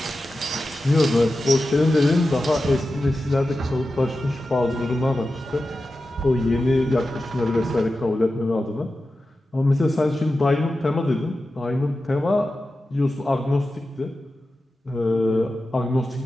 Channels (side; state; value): both; normal; correlation 0.92